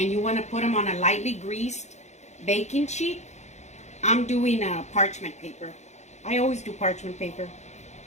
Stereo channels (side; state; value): right; late; 0.33 ms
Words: you want to put them on a lightly greased baking sheet. I'm doing a parchment paper. I always do parchment paper.